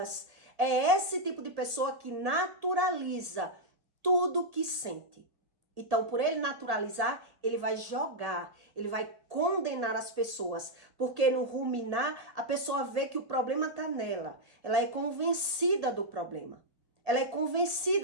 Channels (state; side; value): late; left; 1.8 ms